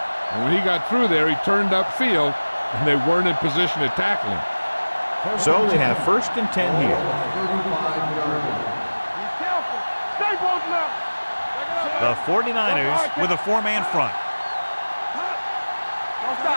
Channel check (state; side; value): inverted; both; correlation -1.00